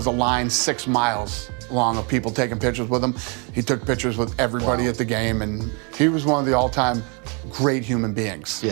a line 6 miles long of people taking pictures with him. He took pictures with everybody at the game, and he was one of the all-time great human beings.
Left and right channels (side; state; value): left; quieter; 35.1 dB